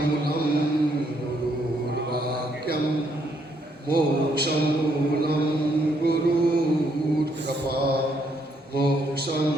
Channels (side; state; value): both; normal; correlation 0.72